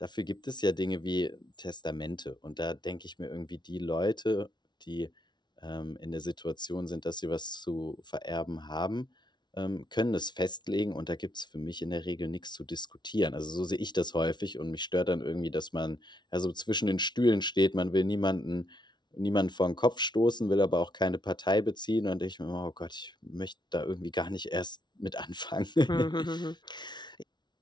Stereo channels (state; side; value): late; right; 0.21 ms